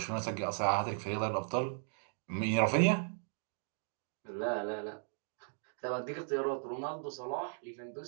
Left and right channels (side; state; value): left; silent; 53 dB below the other